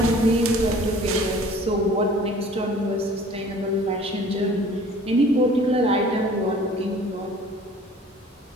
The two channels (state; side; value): normal; both; correlation 0.49